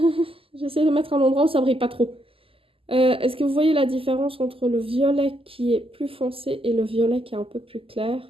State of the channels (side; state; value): left; late; 0.26 ms